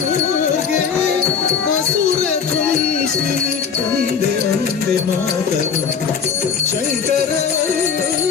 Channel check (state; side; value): quieter; right; 6.5 dB